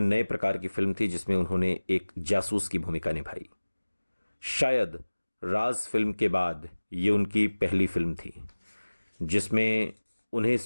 प्रकार की फिल्म थी जिसमें उन्होंने एक जासूस की भूमिका निभाई। शायद राज फिल्म के बाद ये उनकी पहली फिल्म थी जिसमें उन्हें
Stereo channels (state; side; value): inverted; both; correlation -1.00